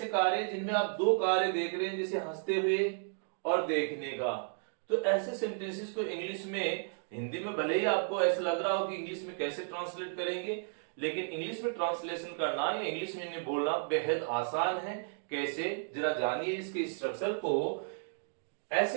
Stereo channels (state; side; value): silent; left; digital silence